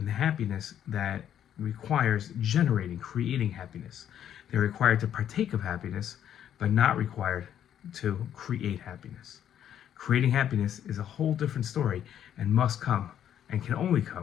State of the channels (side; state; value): right; quieter; 10.1 dB